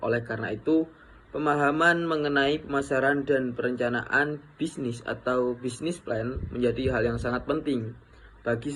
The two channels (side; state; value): both; identical; correlation 1.00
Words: Oleh karena itu, pemahaman mengenai pemasaran dan perencanaan bisnis atau business plan menjadi hal yang sangat penting bagi